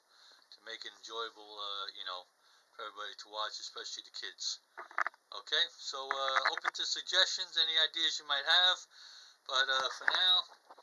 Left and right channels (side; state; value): both; identical; correlation 1.00